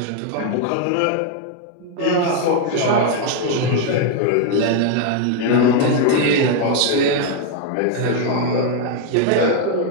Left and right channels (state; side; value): different; both; correlation 0.00